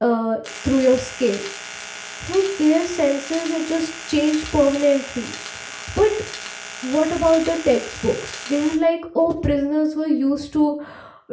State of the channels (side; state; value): both; identical; correlation 1.00